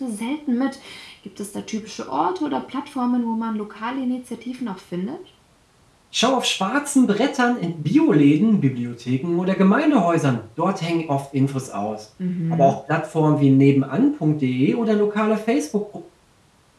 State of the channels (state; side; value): identical; both; correlation 1.00